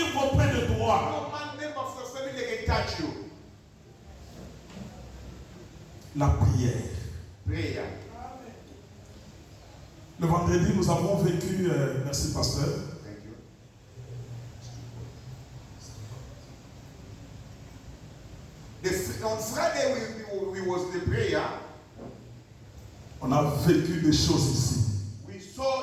auprès de toi. No man member of your family can touch you. La prière. Prayer. Le vendredi, nous avons vécu, merci pasteur, Thank you. On Friday we was the prayer. on a vécu des choses ici. We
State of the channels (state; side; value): identical; both; correlation 1.00